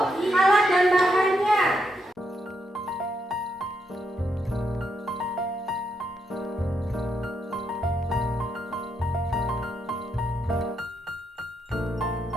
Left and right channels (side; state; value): both; normal; correlation 0.79